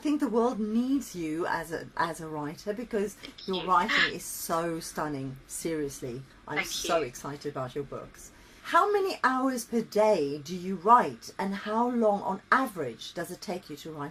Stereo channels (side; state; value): both; identical; correlation 1.00